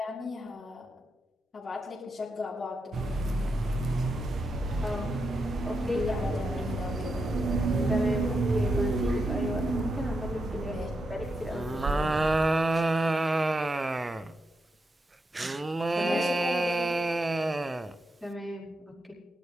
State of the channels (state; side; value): normal; both; correlation 0.85